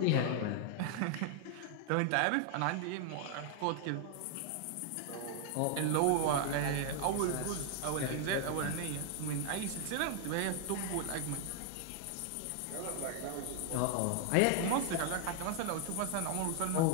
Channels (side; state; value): both; different; correlation 0.00